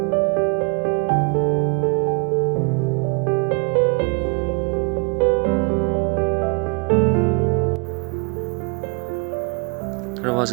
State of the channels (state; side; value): quieter; left; 33.3 dB